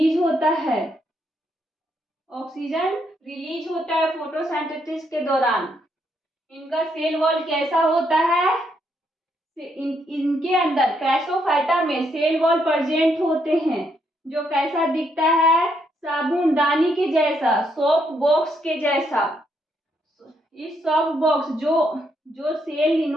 होता है। ऑक्सीजन रिलीज होता है फोटोसिंथेसिस के दौरान। इनका सेल वॉल कैसा होता है? इनके अंदर क्राइसोफाइटा में सेल वॉल प्रेजेंट होते हैं, जो कैसा दिखता है? साबुनदानी के जैसा, सोप बॉक्स के जैसा। इस सोप बॉक्स जो सेल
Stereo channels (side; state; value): both; normal; correlation 0.75